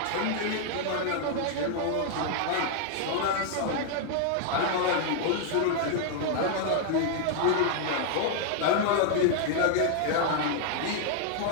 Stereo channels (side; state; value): both; different; correlation 0.00